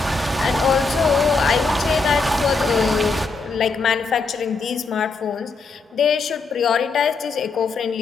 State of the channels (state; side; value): quieter; right; 4.2 dB